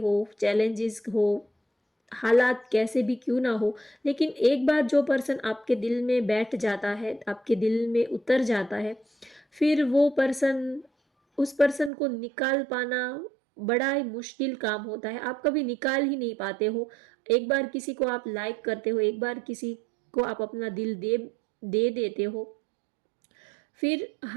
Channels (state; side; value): drops out; left; at 11.9 s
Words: चैलेंजेस हो, हालात कैसे भी क्यों ना हो, लेकिन एक बार जो पर्सन आपके दिल में बैठ जाता है, आपके दिल में उतर जाता है, फिर वो पर्सन, उस पर्सन को निकाल पाना बड़ा ही मुश्किल काम होता है। आप कभी निकाल ही नहीं पाते हो। एक बार किसी को आप लाइक करते हो, एक बार किसी को आप अपना दिल दे देते हो, फिर